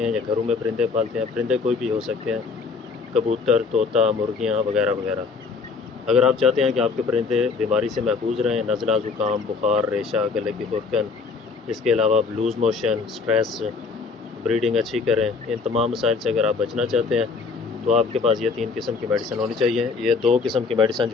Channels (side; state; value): right; quieter; 4.7 dB